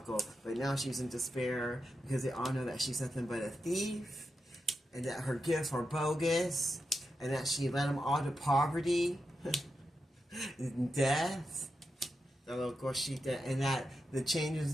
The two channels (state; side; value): normal; both; correlation 0.88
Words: now she's in despair because they all know that she's nothing but a thief, and that her gifts are bogus, and that she led them all to poverty and death. And that the changes